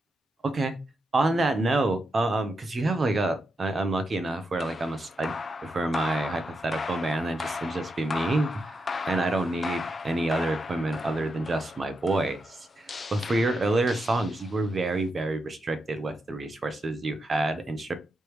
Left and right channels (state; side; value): normal; both; correlation 0.85